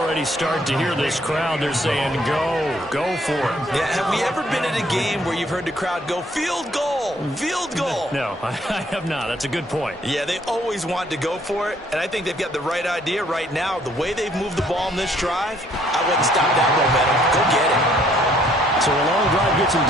start to hear this crowd. They're saying, go for it. Yeah, have we ever been at a game where you've heard the crowd go, field goal, field goal? No, I have not. That's a good point. Yeah, they always want to go for it, and I think they've got the right idea right now. The way they've moved the ball in this drive, I wouldn't stop that momentum. Go get it. So a long drive gets them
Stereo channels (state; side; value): normal; both; correlation 0.64